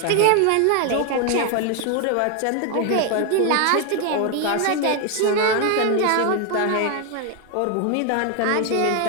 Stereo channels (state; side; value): different; both; correlation 0.01